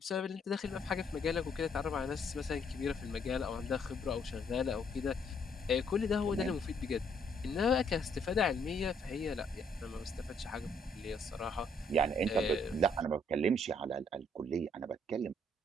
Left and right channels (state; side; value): normal; both; correlation 0.68